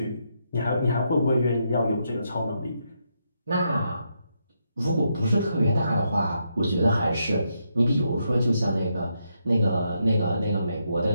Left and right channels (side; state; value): both; inverted; correlation -0.80